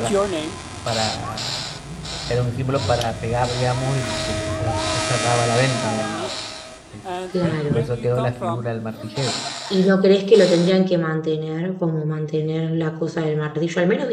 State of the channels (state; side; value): identical; both; correlation 1.00